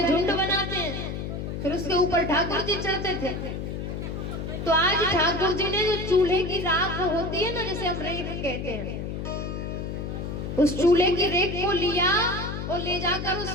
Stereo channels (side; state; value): left; noise; hum, 5 dB below the sound